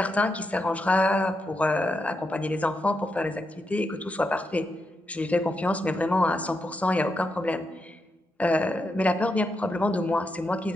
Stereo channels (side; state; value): both; normal; correlation 0.84